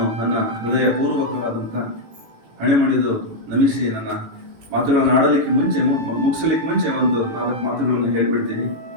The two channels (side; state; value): left; late; 18 ms